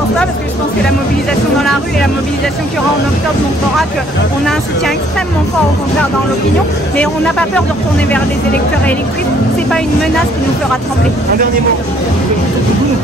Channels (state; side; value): normal; both; correlation 0.62